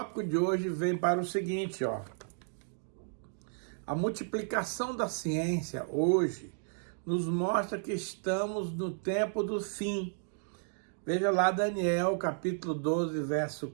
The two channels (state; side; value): silent; left; digital silence